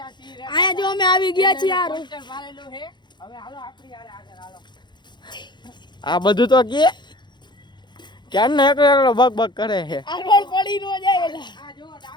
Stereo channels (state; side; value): late; right; 0.22 ms